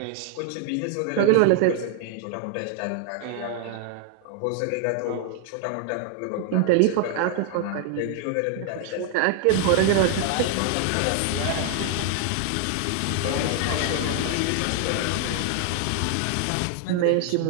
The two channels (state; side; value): different; both; correlation 0.00